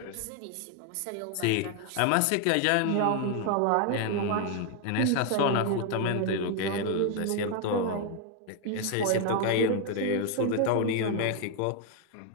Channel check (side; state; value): both; different; correlation 0.00